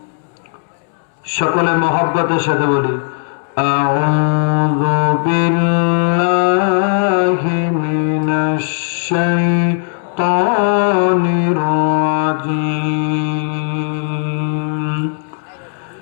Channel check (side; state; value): right; silent; 68 dB below the other